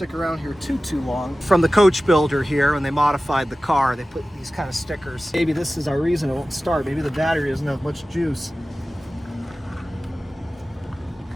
around here too long. From the coach builder here, when they modified the car, they put these kind of stickers. Maybe this is our reason it won't start. Maybe the battery doesn't have much juice.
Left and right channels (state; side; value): normal; both; correlation 0.96